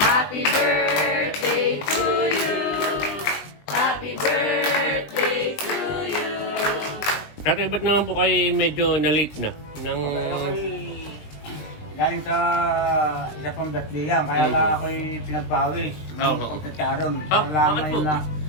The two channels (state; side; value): late; right; 20 ms